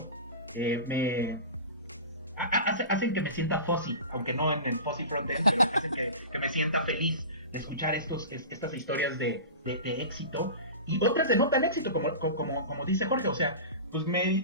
Hacen que me sienta fuzzy, aunque no en el fuzzy frontend, pero hacen que me sienta feliz de escuchar estas historias de éxito y otras de no tan éxito, como dice Jorge. O sea, pues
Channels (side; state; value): both; inverted; correlation -0.32